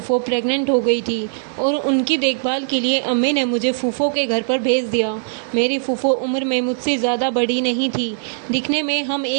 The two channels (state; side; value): silent; left; digital silence